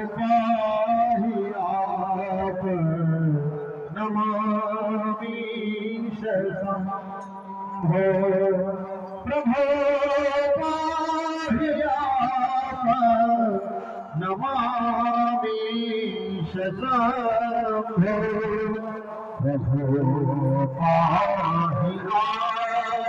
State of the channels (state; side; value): identical; both; correlation 1.00